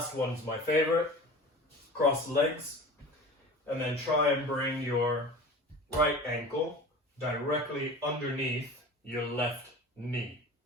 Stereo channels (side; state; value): both; normal; correlation 0.37